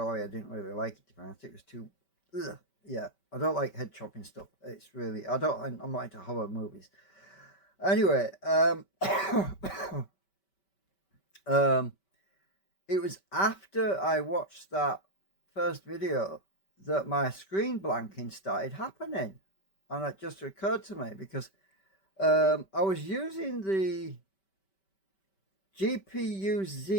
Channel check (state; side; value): late; right; 5.2 ms